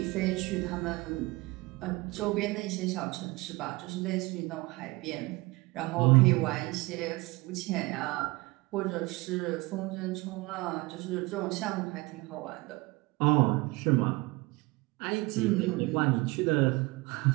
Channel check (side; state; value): left; quieter; 23.4 dB